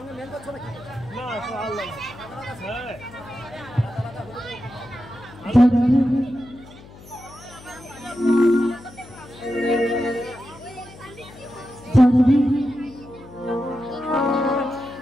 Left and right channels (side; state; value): left; noise; hum, 20 dB below the sound